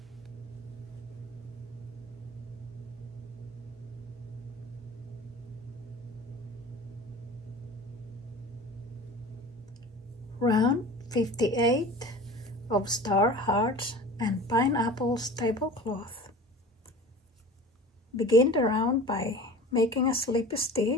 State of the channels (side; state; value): both; normal; correlation 0.38